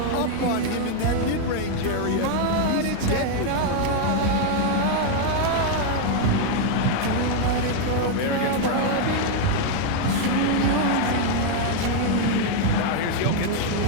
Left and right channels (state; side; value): different; both; correlation 0.00